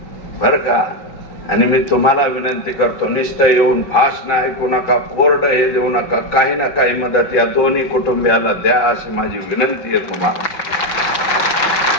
बर का. आणि मी तुम्हाला विनंती करतो, नुसतं येऊन भाषण ऐकू नका, कोरडं हे देऊ नका, काही ना काही मदत या दोन्ही कुटुंबियाला द्या अशी माझी विनंती आहे तुम्हाला.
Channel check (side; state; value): right; late; 5.2 ms